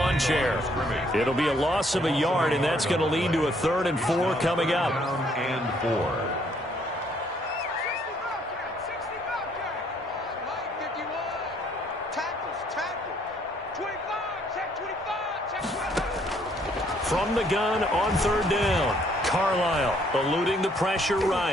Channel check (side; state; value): both; normal; correlation 0.66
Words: chair. It'll be a loss of a yard, and that's going to lead to a 3rd and 4 coming up. And 4. From the gun on 3rd down. Carlisle eluding the pressure